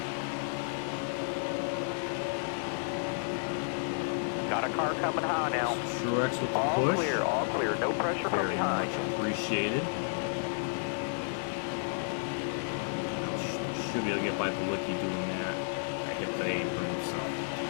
Got a car coming high now. Truex with the All push. all clear. No pressure from Very behind. much appreciated. Should be able to get by Bawicki doing that. I hit the apron, so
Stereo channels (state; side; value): silent; right; digital silence